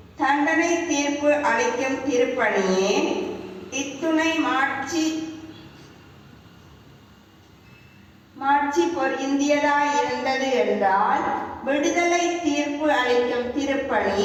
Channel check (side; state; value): both; identical; correlation 1.00